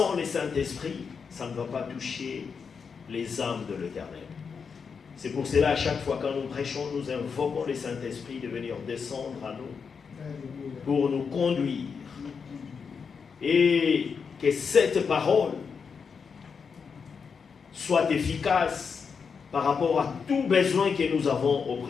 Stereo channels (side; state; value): right; quieter; 5.9 dB